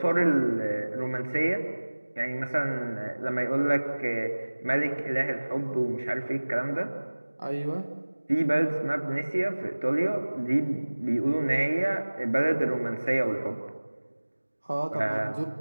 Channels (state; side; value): inverted; both; correlation -1.00